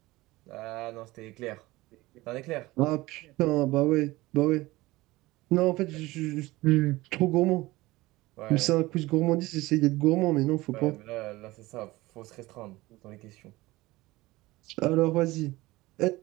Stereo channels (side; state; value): left; quieter; 19.5 dB